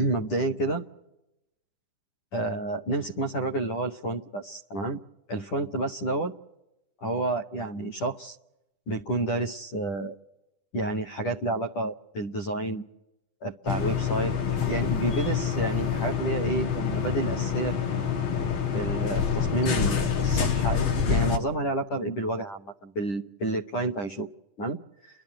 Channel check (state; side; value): late; right; 10 ms